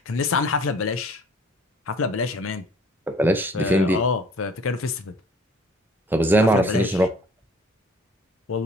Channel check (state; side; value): normal; both; correlation 0.53